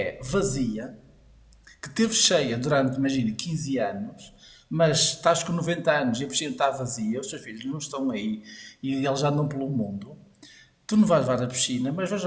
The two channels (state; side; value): identical; both; correlation 1.00